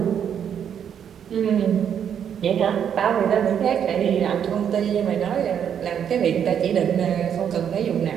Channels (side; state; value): left; quieter; 8.5 dB